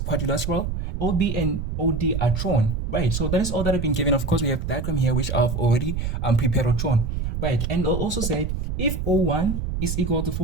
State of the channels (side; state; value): right; noise; rumble, 2 dB below the sound